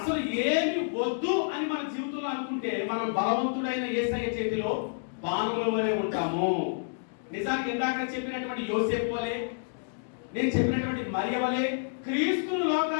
ఏమి వద్దు అని మన జీవితంలో అనుకుంటే మనం బలవంతుడైన యేసయ్య చేతిలో బాణముల వలె ఉంటాము. నిజానికి ఇందాక చెప్పినటువంటి యోసేపు వలె, నేను చెప్పినటువంటి మరియ వలె క్రీస్తును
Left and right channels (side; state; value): right; silent; digital silence